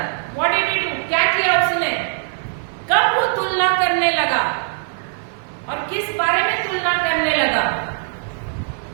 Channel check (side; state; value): left; silent; 57 dB below the other